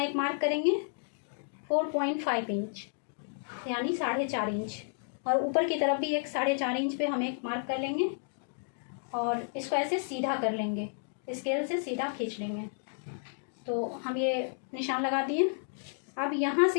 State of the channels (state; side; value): silent; right; digital silence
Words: एक मार्क करेंगे, 4.5 इंच यानी 4.5 इंच। और ऊपर की तरफ भी एक 4.5 इंच पे हम एक मार्क कर लेंगे। और इसको ऐसे सीधा कर लेंगे, स्केल से सीधा खींच लेंगे। तो हम ये निशान लगा दिए। अब यहाँ